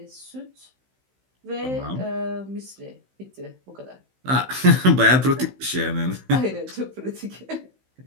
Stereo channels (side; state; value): left; late; 16 ms